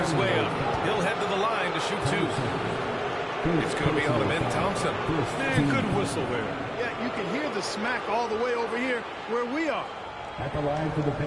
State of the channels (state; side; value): identical; both; correlation 1.00